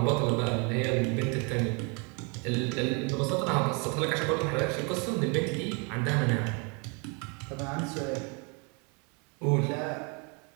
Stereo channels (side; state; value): left; quieter; 33.1 dB